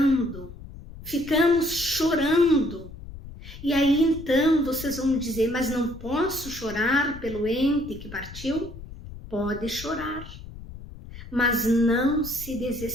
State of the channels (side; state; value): left; noise; rumble, 14 dB below the sound